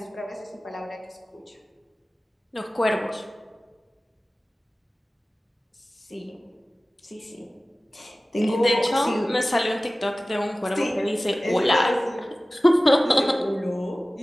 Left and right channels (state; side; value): normal; both; correlation 0.97